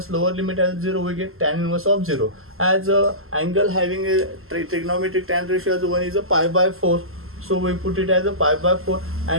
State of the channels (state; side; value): late; left; 0.62 ms